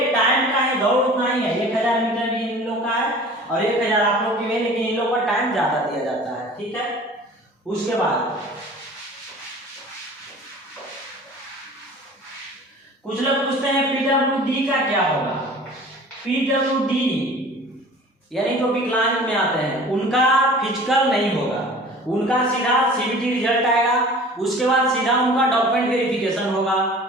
टाइम का है, दौड़ उतना ही है, 1000 मीटर भी इन लोग का है और 1000 आप लोग की भी, लेकिन इन लोग का टाइम ज्यादा दिया जाता है, ठीक है। उसके बाद कुछ लोग पूछते हैं PWD का क्या होगा। PWD यानी जो विकलांग में आते हैं उनका फिजिकल नहीं होगा, उनका सीधा CBT रिजल्ट आएगा, उसके बाद सीधा उनका डॉक्यूमेंट वेरिफिकेशन होगा,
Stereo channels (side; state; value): both; normal; correlation 0.44